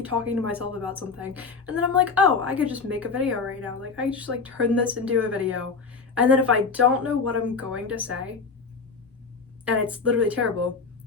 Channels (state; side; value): quieter; right; 4.7 dB